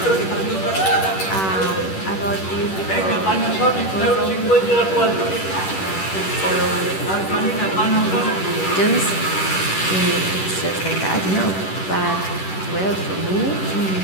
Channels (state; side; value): late; right; 10 ms